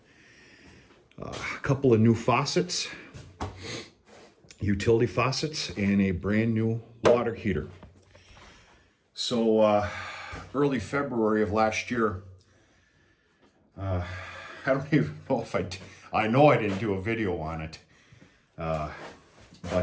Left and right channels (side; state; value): both; identical; correlation 1.00